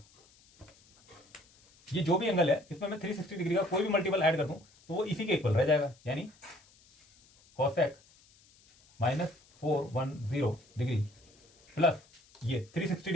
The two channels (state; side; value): noise; left; hiss, 29 dB below the sound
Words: ये जो भी एंगल है इसमें मैं 360 डिग्री का कोई भी मल्टीपल ऐड कर दूं तो वो इसी के इक्वल रह जाएगा। यानी कॉसेक -410 डिग्री प्लस ये 360